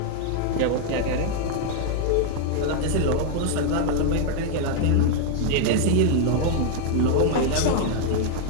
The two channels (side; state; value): both; different; correlation 0.00